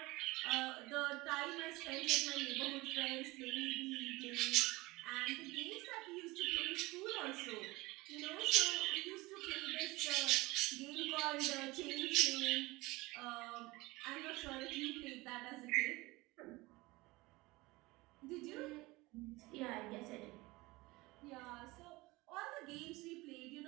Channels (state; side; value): quieter; left; 21.6 dB